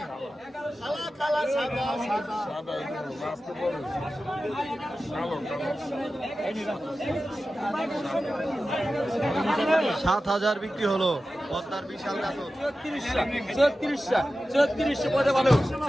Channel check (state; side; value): normal; both; correlation 0.94